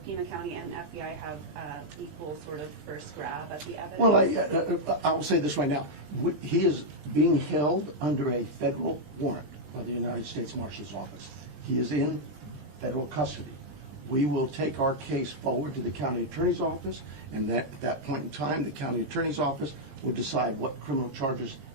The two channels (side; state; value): left; late; 20 ms